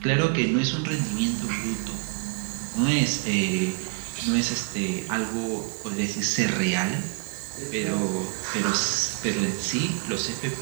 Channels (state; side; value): quieter; left; 32.0 dB